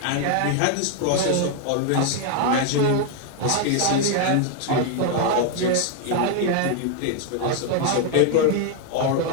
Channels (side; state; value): both; different; correlation 0.00